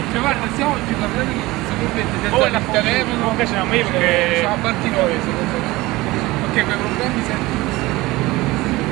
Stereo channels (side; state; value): left; quieter; 20.0 dB